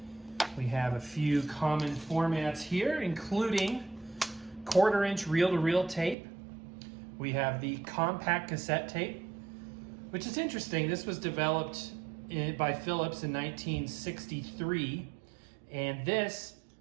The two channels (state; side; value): drops out; left; at 6.2 s